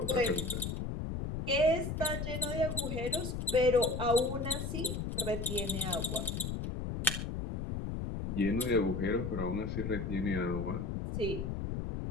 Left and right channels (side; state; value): left; noise; rumble, 3 dB below the sound